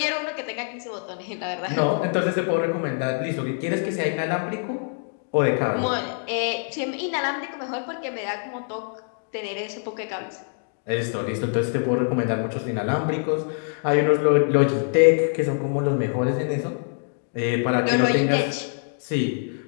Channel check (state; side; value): silent; right; 59 dB below the other